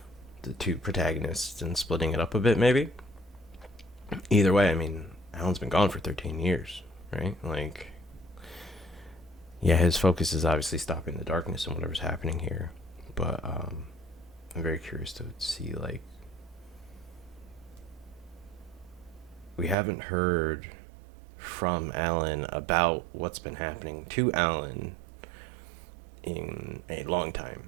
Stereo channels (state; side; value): drops out; left; at 19.8 s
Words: the two protagonists and splitting it up a bit, maybe. Either way, I mean, Alan's been gone for 13 years, right? Like, yeah, his focus is obviously stopping the darkness and whatever's happening here. But I'm very curious to see, like, we haven't heard from Alan about what's been happening to Alan in a long time.